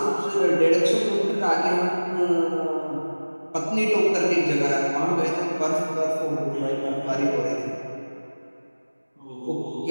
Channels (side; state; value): both; inverted; correlation -1.00